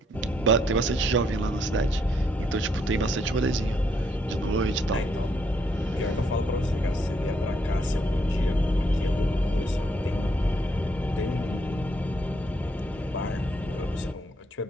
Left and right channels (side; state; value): both; normal; correlation 0.72